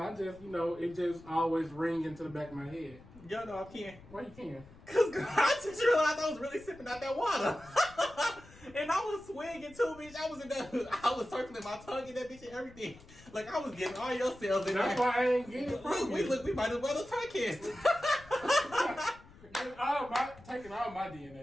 just, it just always ring into the back of my head. Yo, no, I can't. Why you can't? Because I just realized I was really sipping out that water. And I was swinging too, bitch. I was circling my tongue in that bitch and everything. Like, I was getting all your cells in there. That's why I ain't getting it from you. We might as well have podcast. Taking all my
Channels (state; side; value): noise; left; rumble, 21 dB below the sound